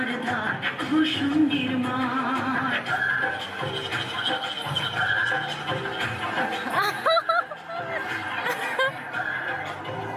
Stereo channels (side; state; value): both; identical; correlation 1.00